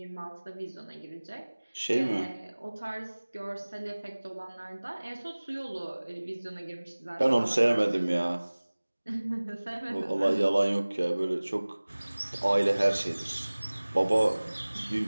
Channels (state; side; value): inverted; both; correlation -1.00